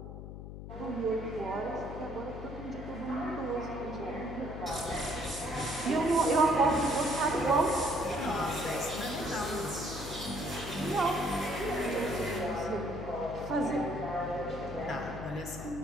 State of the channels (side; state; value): left; noise; hum, 10 dB below the sound